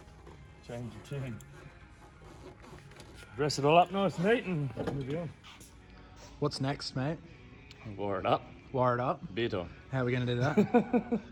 Change your tune. Dress it all up nice and neat and move on. What's next, mate? Wire it up. Wire it up. Beer time. How are we going to do that?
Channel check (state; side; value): identical; both; correlation 1.00